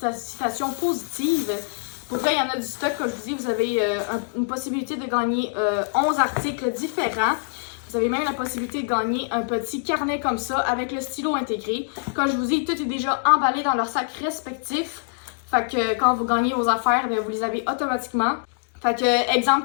positive. Pour vrai, il y en a du stock, comme je vous dis. Vous avez une possibilité de gagner 11 articles différents. Vous avez même la possibilité de gagner un petit carnet comme ça avec le stylo intégré. Comme je vous dis, tout est déjà emballé dans leur sac respectif. Fait que quand vous gagnez vos affaires, bien, vous les avez automatiquement. Fait que, exemple,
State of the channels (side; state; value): right; silent; digital silence